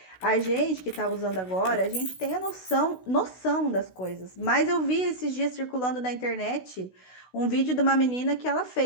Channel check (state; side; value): late; right; 16 ms